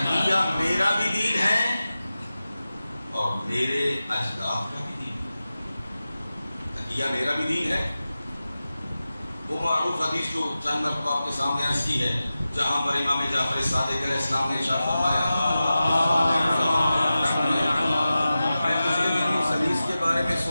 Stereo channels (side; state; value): both; inverted; correlation -0.94